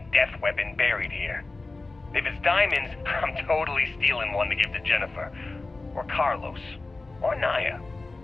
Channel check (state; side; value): quieter; right; 3.4 dB